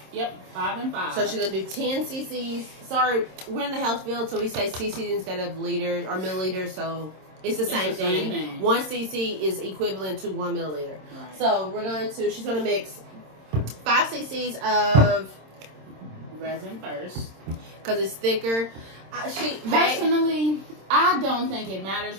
Yep, 5 and 5. So she's going to do 10 cc's. Sorry, we're in the health field, so we say cc's instead of liters or milliliters. So it's the same thing. 1 cc is equivalent to 1 milliliter. Right. So she's going to mix 5 cc's of resin first because it's thicker. Personally, I don't think it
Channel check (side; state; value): left; late; 26 ms